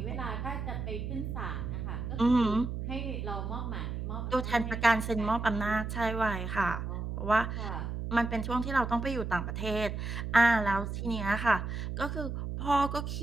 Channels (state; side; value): noise; right; hum, 4 dB below the sound